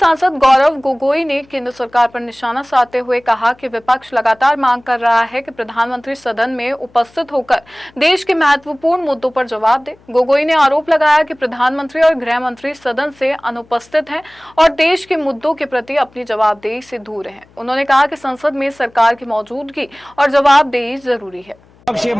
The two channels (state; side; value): noise; left; hum, 29 dB below the sound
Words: गौरव गोगोई ने केंद्र सरकार पर निशाना साधते हुए कहा कि विपक्ष लगातार मांग कर रहा है कि प्रधानमंत्री सदन में उपस्थित होकर देश के महत्वपूर्ण मुद्दों पर जवाब दे। गोगोई ने आरोप लगाया कि प्रधानमंत्री और गृह मंत्री सदन से अनुपस्थित हैं और देश के मुद्दों के प्रति अपनी जवाबदेही से दूर हैं। उन्होंने कहा कि संसद में सरकार की मौजूदगी और जवाबदेही जरूरी है। विपक्ष ये